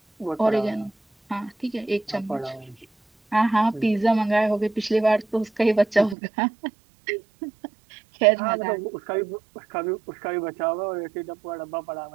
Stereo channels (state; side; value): drops out; left; at 6.2 s